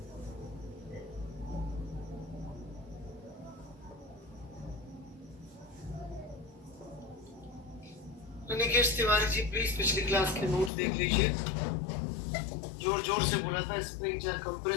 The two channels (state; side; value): drops out; right; at 10.7 s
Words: राकेश तिवारी जी प्लीज पिछली क्लास के नोट्स देख लीजिए। जोर जोर से बोला था स्प्रिंग चाहे